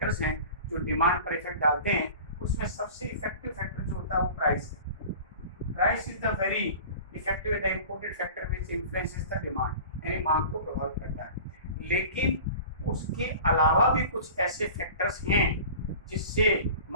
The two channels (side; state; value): both; inverted; correlation -0.39